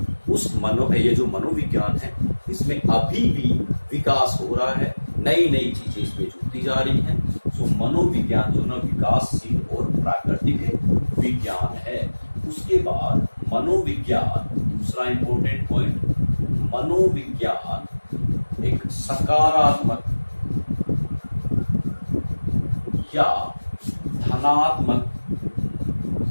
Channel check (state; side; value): inverted; both; correlation -1.00